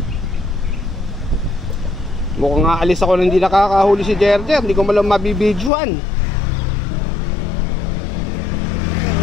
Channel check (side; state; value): right; drops out; at 5.7 s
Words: Mukhang nga alis ako na hindi nakakahuli si Jerjer. Hindi ko malang mabibidyoan.